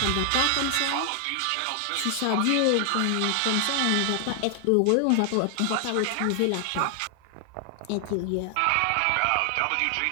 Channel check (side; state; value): both; different; correlation 0.00